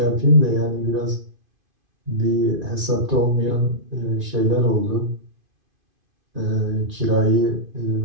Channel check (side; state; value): left; late; 2.5 ms